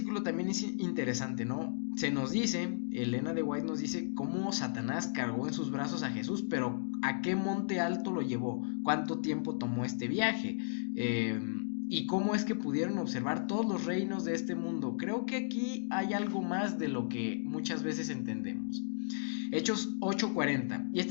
también es interesante, ¿no? Se nos dice, Elena de White nos dice cómo Satanás cargó en sus brazos a Jesús, pero ¿a qué monte alto lo llevó? ¿Cuánto tiempo tomó este viaje? ¿Y cómo es que pudieron observar todos los reinos de este mundo? Creo que aquí hay algo más de lo que muchas veces entendemos. Hechos 8:40, y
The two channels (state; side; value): silent; right; digital silence